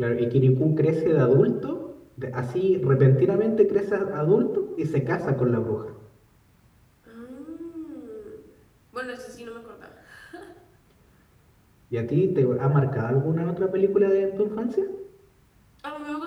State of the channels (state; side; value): identical; both; correlation 1.00